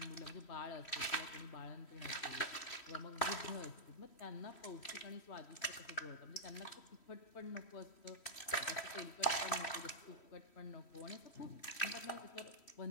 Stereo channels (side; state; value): right; late; 3.1 ms